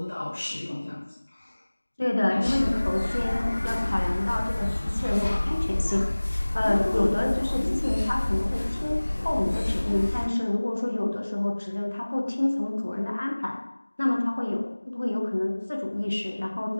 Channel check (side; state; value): both; inverted; correlation -1.00